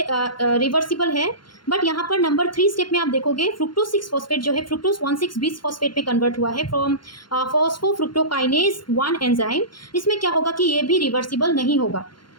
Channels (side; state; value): right; late; 0.72 ms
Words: रिवर्सिबल है। बट यहाँ पर नंबर 3 स्टेप में आप देखोगे फ्रुक्टोज 6 फॉस्फेट जो है फ्रुक्टोज 1,6 बीस फॉस्फेट में कन्वर्ट हुआ है फ्रॉम फॉस्फोफ्रुक्टोकाइनेज 1 एंजाइम। इसमें क्या होगा कि ये भी रिवर्सिबल नहीं होगा।